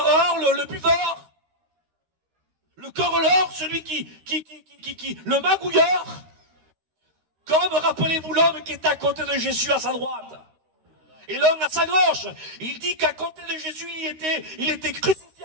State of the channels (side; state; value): left; late; 13 ms